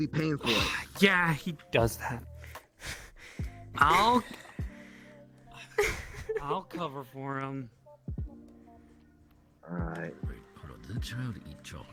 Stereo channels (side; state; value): both; identical; correlation 1.00